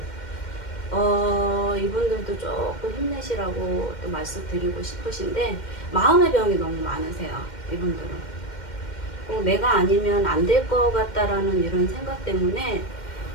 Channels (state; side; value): late; right; 2.1 ms